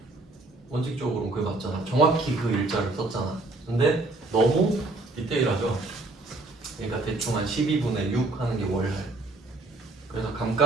원칙적으로는 그게 맞잖아. 정확히 그 일자를 썼잖아. 근데 너무 디테일하죠? 그러니까 대충 한 12분의 6 하는 게 월할. 그래서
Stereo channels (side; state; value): left; quieter; 3.1 dB